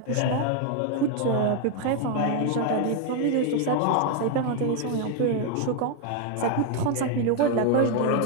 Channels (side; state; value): both; different; correlation 0.01